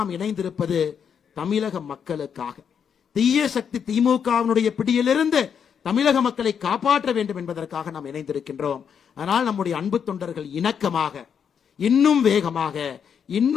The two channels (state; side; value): quieter; right; 7.4 dB